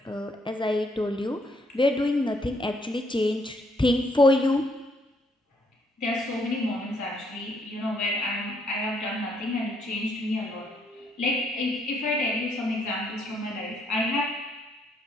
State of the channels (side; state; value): both; normal; correlation 0.71